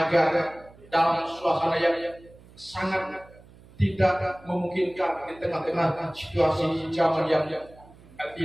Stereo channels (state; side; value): noise; right; hum, 24 dB below the sound